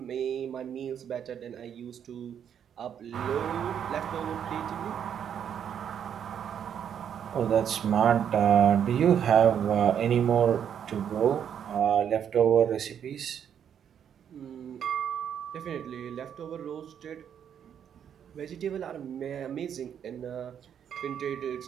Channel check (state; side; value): quieter; left; 8.7 dB